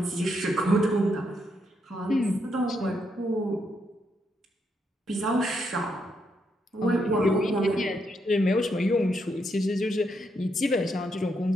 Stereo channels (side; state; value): both; normal; correlation 0.79